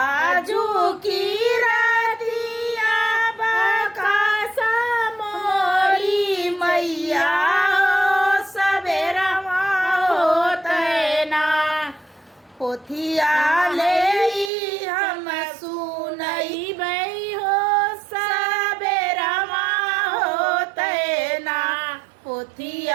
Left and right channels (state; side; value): drops out; left; at 14.5 s